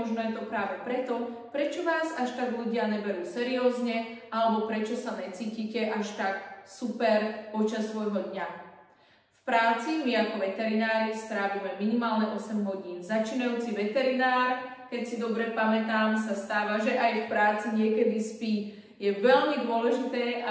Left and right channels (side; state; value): both; identical; correlation 1.00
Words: je to práve preto, prečo vás až tak ľudia neberú seriózne alebo prečo sa necítite až tak super počas svojho dňa. V práci my ako veterinári strávime minimálne 8 hodín. Začínajúci veterinár, keď si dobre pamätám, sa stáva, že aj v práci niekedy spí. Je veľmi dôležité,